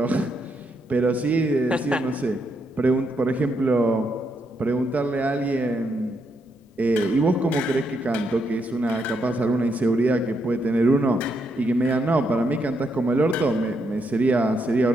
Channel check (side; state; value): both; normal; correlation 0.78